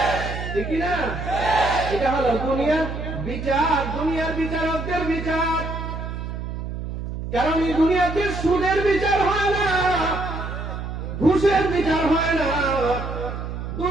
ঠিক না? এটা হলো দুনিয়ার বিচার, দুনিয়ার বিচারকদের বিচার। কারণ এই দুনিয়াতে সুদের বিচার হয় না, ঘুষের বিচার হয় না,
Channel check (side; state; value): right; noise; hum, 6 dB below the sound